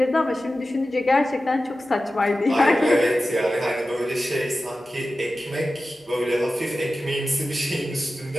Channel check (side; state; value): both; normal; correlation 0.94